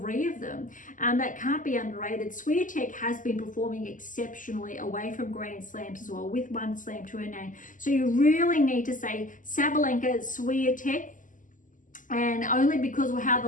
of them. That can't be underrated. Swiatek has been performing exceptionally away from Grand Slams as well, with 1 slam to her name. So you really need to say Sabalenka, Swiatek, and only because of how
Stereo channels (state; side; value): late; right; 0.38 ms